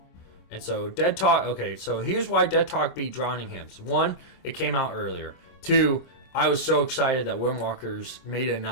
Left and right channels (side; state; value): right; late; 25 ms